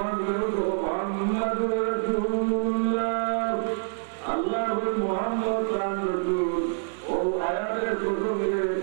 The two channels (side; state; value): left; silent; digital silence